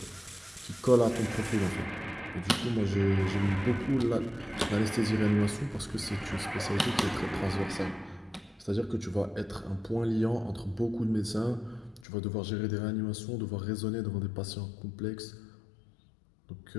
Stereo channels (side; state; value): right; drops out; at 12.1 s